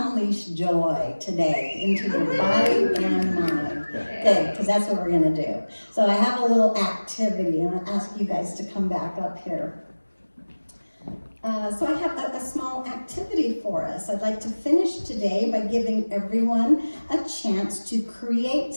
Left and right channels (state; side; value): inverted; both; correlation -1.00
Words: joy today into your body and mind? Good, because that's what we're going to do. So I have a little activity, and I'll ask you guys to come back up here. So I have a small activity for us. I'd like to finish today by giving everyone a chance to create